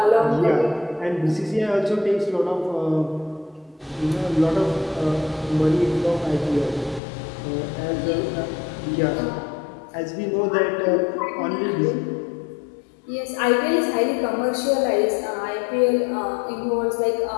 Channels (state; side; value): drops out; right; at 7.0 s